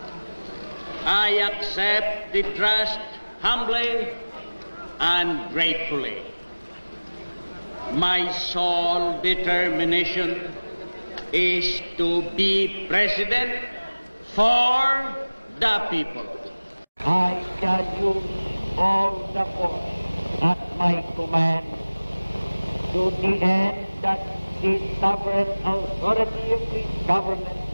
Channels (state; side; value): inverted; both; correlation -1.00